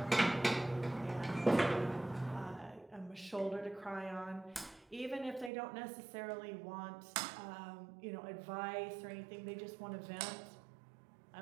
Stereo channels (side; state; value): left; drops out; at 5.5 s